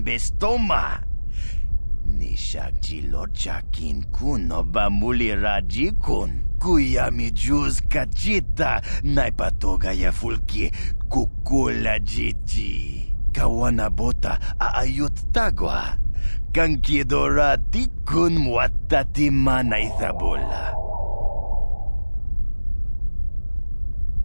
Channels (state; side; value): inverted; both; correlation -1.00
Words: bestoma. Nishak jilorcha kin kun no ba mulira jikun. Kuya mi juz kachita naipatoga ya fulki kukula jiji. Kawana bota aayot tagwa. Kankidora tikun muatatima na ithabola.